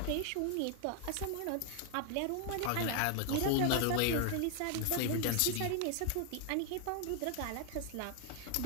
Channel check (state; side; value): different; both; correlation 0.00